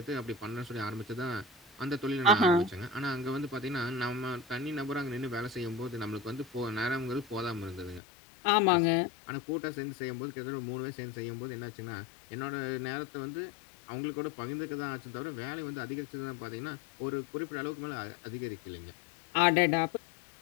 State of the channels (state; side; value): drops out; right; at 8.0 s